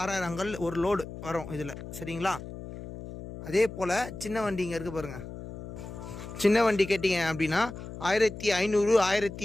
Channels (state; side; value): noise; left; hum, 11 dB below the sound